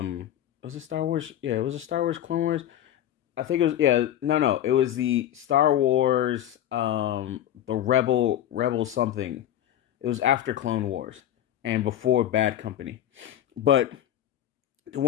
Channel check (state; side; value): quieter; right; 11.5 dB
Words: it Star Wars? Yeah, it was a Star Wars Clone Wars. I think it was, it was the Star Wars, the Rebel something. It was after Clone Wars and before Bad Company, but the